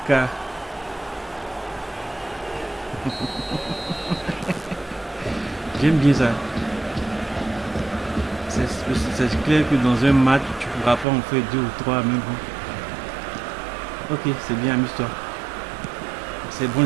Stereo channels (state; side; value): drops out; left; at 11.1 s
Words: J'aime bien ça. C'est clair que dans un match, tu pourras pas en faire 2 ou 3, mais bon. Ok, c'est bien, amuse-toi. C'est bon